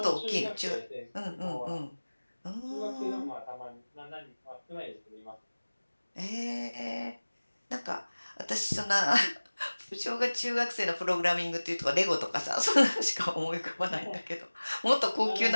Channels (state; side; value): inverted; both; correlation -1.00